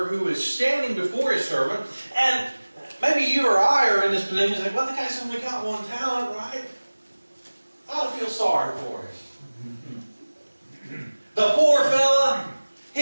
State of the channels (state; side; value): inverted; both; correlation -1.00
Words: who is standing before his servant, and maybe you or I are in this position, it's like, well, the guy's only got 1 talent, right? I ought to feel sorry for him. The poor fella,